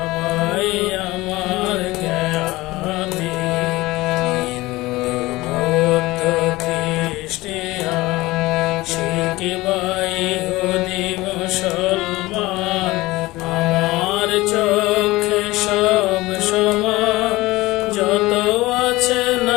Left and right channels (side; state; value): right; quieter; 19.7 dB